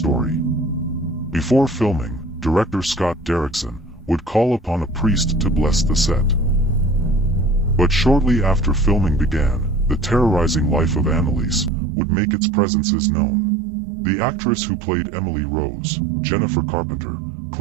Before filming, director Scott Derrickson would call upon a priest to bless the set. But shortly after filming began, the terrorizing life of Anneliese would make its presences known. The actress who played Emily Rose, Jennifer Carpenter,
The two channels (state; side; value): drops out; left; at 11.7 s